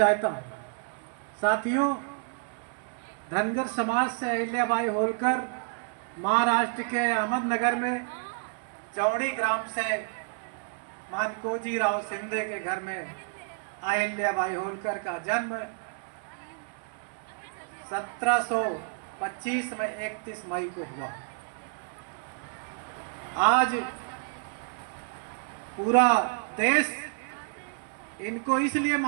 हूँ। साथियों, धनगर समाज से अहिल्याबाई होलकर महाराष्ट्र के अहमदनगर में चौड़ी ग्राम से मातकोजी राव शिंदे के घर में अहिल्याबाई होलकर का जन्म 1725 में 31 मई को हुआ। आज पूरा देश इनको इसलिए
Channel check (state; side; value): quieter; left; 36.8 dB